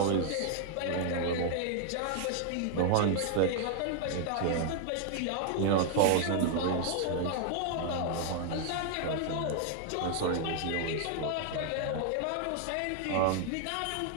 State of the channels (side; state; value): both; different; correlation 0.00